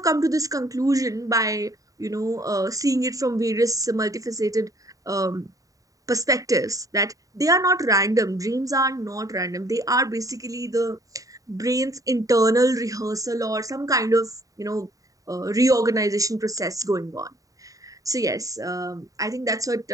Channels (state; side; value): late; left; 0.16 ms